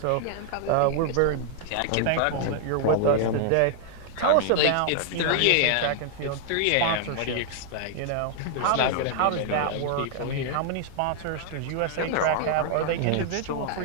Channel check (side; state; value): both; different; correlation 0.00